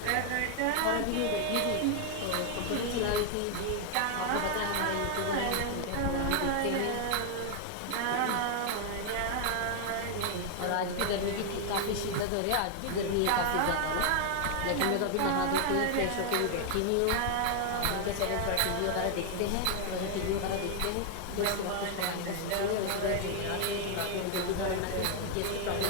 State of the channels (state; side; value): different; both; correlation 0.00